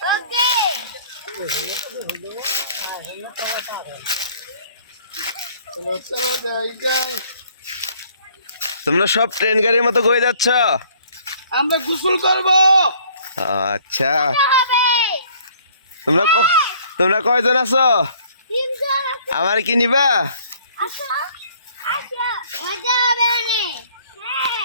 চলো যাই যাই। তোমরা সব ট্রেন গাড়ির মতো কই যাচ্ছ? আমরা গোসল করবো। আচ্ছা, তোমরা কয়জন আছো? আমার কি নিবা?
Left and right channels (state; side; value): inverted; both; correlation -0.58